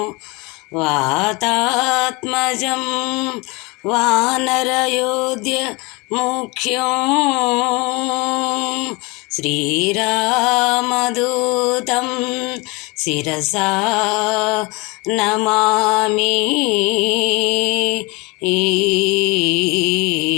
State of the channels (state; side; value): quieter; right; 26.5 dB